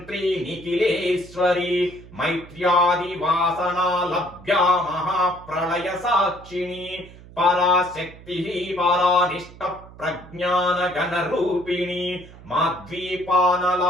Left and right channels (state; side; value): noise; right; hum, 19 dB below the sound